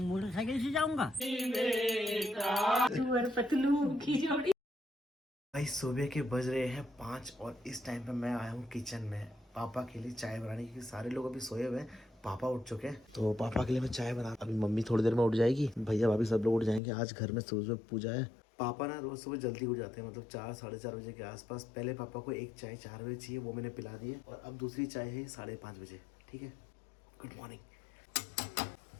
से जाऊंगा। भाई सुबह के बज रहे हैं 5 और इस टाइम पे मैं आया हूँ किचन में पापा के लिए चाय बनाने, क्योंकि सारे लोग अभी सोए हुए हैं, पापा उठ चुके हैं। तो पापा के लिए मैं चाय बना, अभी मम्मी थोड़ी देर में उठ जाएगी, भैया भाभी सब लोग उठ जाएंगे। आज घर में सुबह पूजा है। पापा ना रोज सुबह जल्दी उठ जाते हैं, मतलब 4 साढ़े 4 बजे के आसपास। पहले पापा को एक चाय 4 बजे चाहिए, वो मैंने पिला दी है, और अब दूसरी चाय है 5:30 बजे। ठीक है, गुड मॉर्निंग।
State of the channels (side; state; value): right; drops out; at 16.8 s